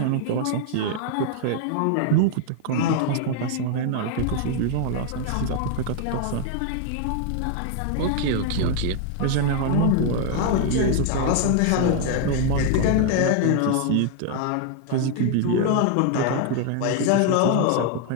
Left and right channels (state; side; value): different; both; correlation 0.00